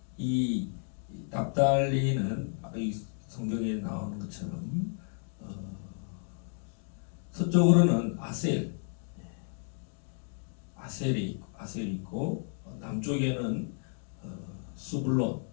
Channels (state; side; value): silent; right; 56 dB below the other